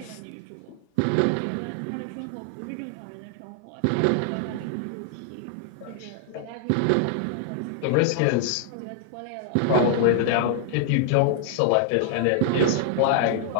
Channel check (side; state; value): both; different; correlation -0.01